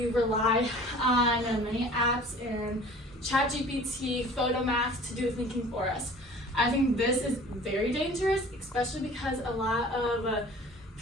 rely on many apps and ChatGPT, Photomath to do the thinking for us. I think this is very dangerous, especially because a lot of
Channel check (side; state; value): both; normal; correlation 0.46